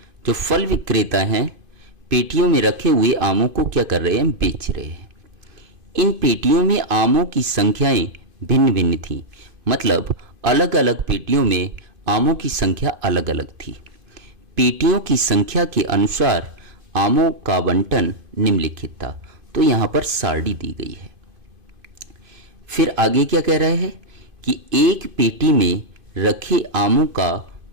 जो फल विक्रेता हैं पेटियों में रखे हुए आमों को क्या कर रहे हैं, बेच रहे हैं। इन पेटियों में आमों की संख्याएं भिन्न भिन्न थी, मतलब अलग अलग पेटियों में आमों की संख्या अलग अलग थी। पेटियों की संख्या के अनुसार आमों का आवंटन निम्नलिखित था। तो यहाँ पर सारणी दी गई है। फिर आगे क्या कह रहा है कि एक पेटी में रखे आमों का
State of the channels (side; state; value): left; late; 2.5 ms